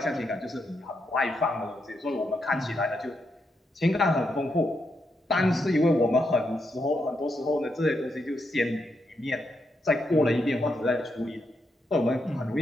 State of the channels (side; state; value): both; normal; correlation 0.81